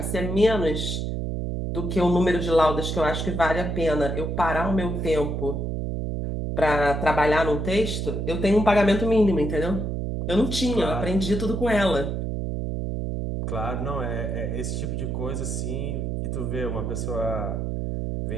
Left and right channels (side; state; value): right; noise; hum, 2 dB below the sound